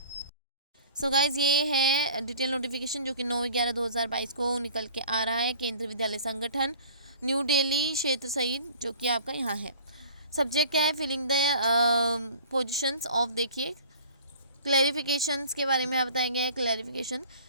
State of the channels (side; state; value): both; inverted; correlation -0.47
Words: सो गाइज, ये है डिटेल नोटिफिकेशन जो कि 9/11/2022 को निकल के आ रहा है। केंद्रीय विद्यालय संगठन, न्यू दिल्ली क्षेत्र सहित, जो कि आपका यहाँ है। सब्जेक्ट क्या है? फिलिंग द पोजिशंस ऑफ, देखिए क्लैरिफिकेशंस के बारे में यहाँ बताया गया है। Clarification,